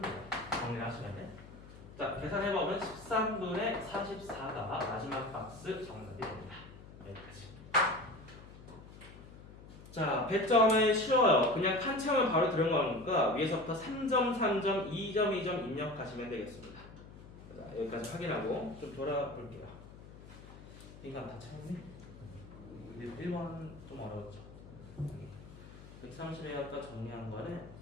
돼요. 정리를 하시면 돼. 자, 계산해보면 13분의 44가 마지막 박스 정답이 됩니다. 여기까지. 자, 배점은 쉬워요. 그냥 칸 채우면 바로 들어가는 거니까 위에서부터 3점, 3점, 2점, 2점 입력하시면 되겠습니다. 자, 여기까지 확인하고 좀 돌아볼게요. 인간 다 채웠네? 1번 좀 어려웠죠. 130에 아까 정리한 거는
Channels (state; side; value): noise; left; hum, 17 dB below the sound